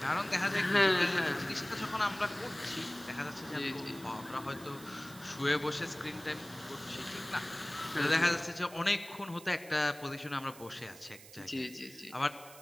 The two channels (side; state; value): right; noise; hiss, 18 dB below the sound